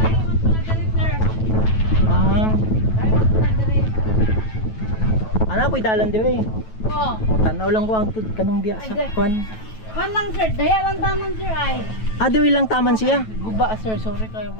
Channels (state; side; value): late; right; 9.2 ms